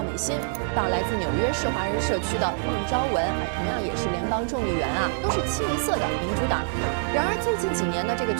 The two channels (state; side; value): silent; left; digital silence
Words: 美心，到来自纽约市华人社区的孟昭文，同样也是联邦众议员啊，都是清一色的民主党。然而最近几年呢，这个